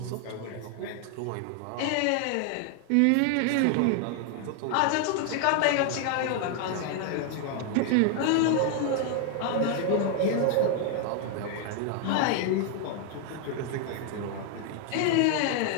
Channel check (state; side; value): different; both; correlation 0.00